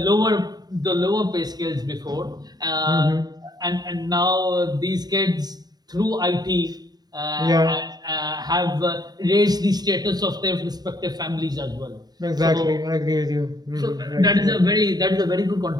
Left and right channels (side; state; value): left; late; 0.19 ms